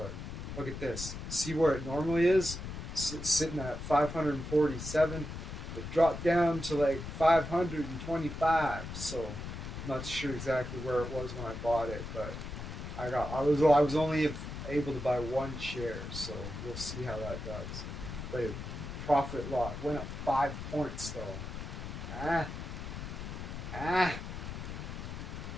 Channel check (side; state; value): left; noise; rumble, 8 dB below the sound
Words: Look at this. See where it normally is? Sitting at 547. It dropped down to like 525. So I'm not sure exactly where it was when I bought it, but I was only able to buy one share, so we'll see how that does. But profit loss went up 5 points though. Ah.